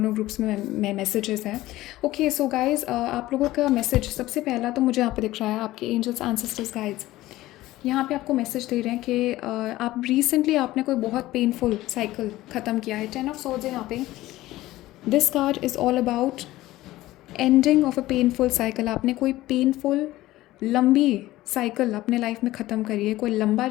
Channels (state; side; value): quieter; right; 16.7 dB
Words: ग्रुप्स में मैसेजेस हैं। ओके, सो गाइज, आप लोगों का मैसेज सबसे पहला तो मुझे यहाँ पे दिख रहा है आपके एंजल्स एंसेस्टर्स गाइड्स यहाँ पे आपको मैसेज दे रहे हैं कि आप रिसेंटली आपने कोई बहुत पेनफुल साइकिल ख़त्म किया है। 10 ऑफ सोर्ड्स है यहाँ पे। This card is all about ending of a painful cycle. आपने कोई पेनफुल लंबी साइकिल अपने लाइफ में ख़त्म करी है, कोई लंबा